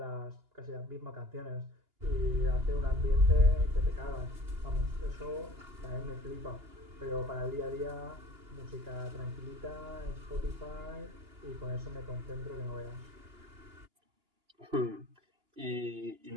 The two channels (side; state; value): left; late; 2.9 ms